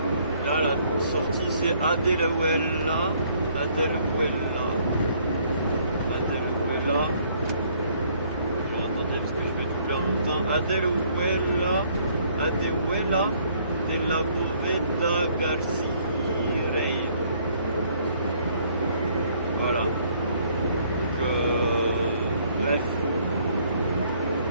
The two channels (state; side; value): inverted; both; correlation -0.64